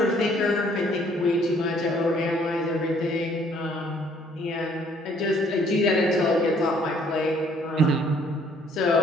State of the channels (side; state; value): both; normal; correlation 0.62